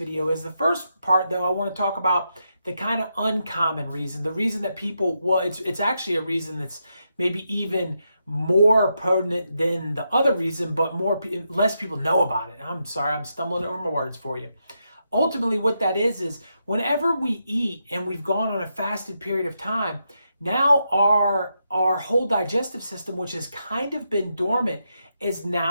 is. The first part, though, I want to talk about the kind of uncommon reason, the reason that people, well, it's actually a reason that's maybe even more potent than the other reason, but less people know about it. I'm sorry, I'm stumbling over my words for you. Ultimately, what that is whenever we eat and we've gone on a fasted period of time, now our whole digestive system, which has kind of been dormant, has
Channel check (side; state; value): both; inverted; correlation -0.83